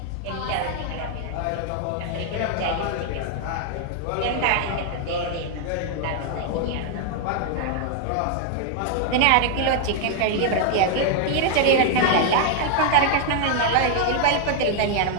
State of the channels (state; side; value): different; both; correlation 0.00